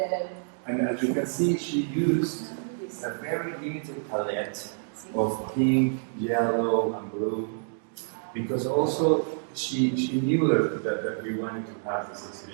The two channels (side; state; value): left; silent; digital silence